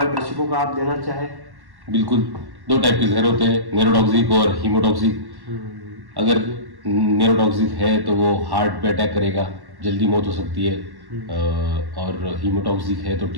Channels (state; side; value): late; left; 1.1 ms